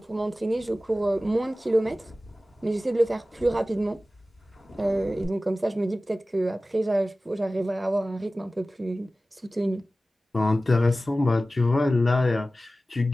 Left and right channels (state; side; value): normal; both; correlation 0.96